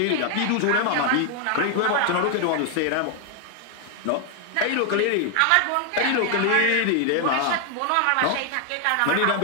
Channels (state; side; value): different; both; correlation 0.00